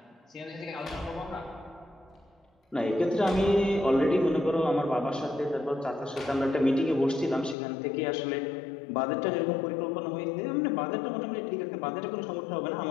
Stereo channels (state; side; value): drops out; right; at 7.6 s